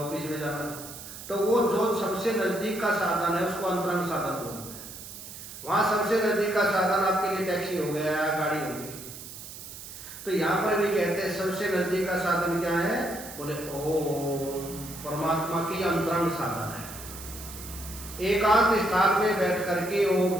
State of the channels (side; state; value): right; noise; hiss, 13 dB below the sound